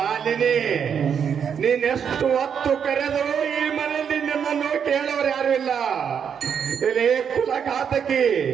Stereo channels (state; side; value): quieter; left; 7.5 dB